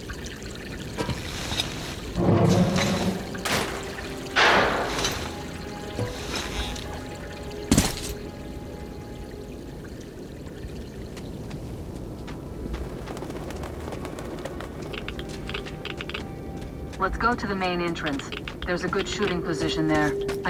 Let's go to the main entrance. There's a good shooting position there.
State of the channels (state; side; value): identical; both; correlation 1.00